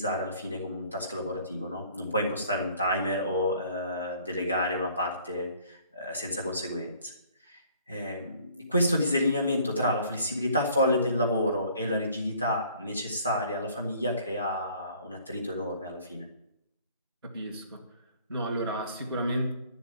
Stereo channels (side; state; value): both; inverted; correlation -0.56